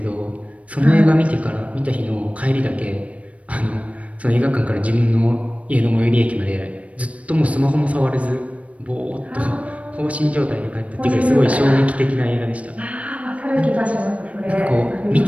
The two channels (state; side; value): late; left; 0.065 ms